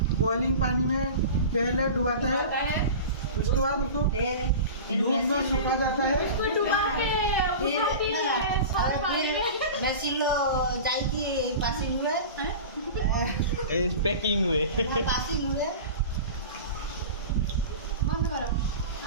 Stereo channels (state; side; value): inverted; both; correlation -0.33